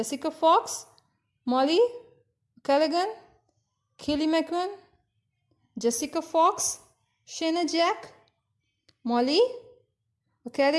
Fox, Mollie O'Callaghan, Kaylee McKeown, Jessica Fox, Shayna Jack, Mollie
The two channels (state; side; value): identical; both; correlation 1.00